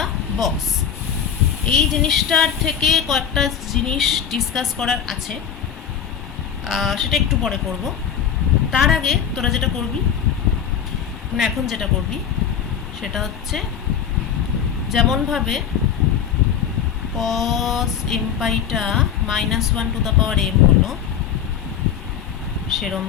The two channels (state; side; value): quieter; right; 8.3 dB